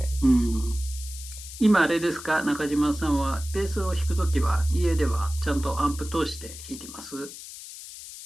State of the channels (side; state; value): left; noise; hiss, 13 dB below the sound